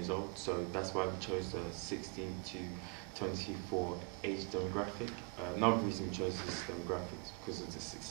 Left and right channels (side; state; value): left; quieter; 36.3 dB